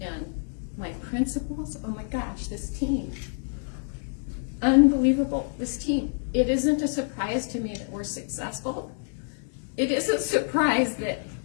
and my principals. Oh my gosh, this team. Unbelievable, this team. It isn't a surprise to me that we're successful. It is a surprise that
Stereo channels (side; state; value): right; silent; digital silence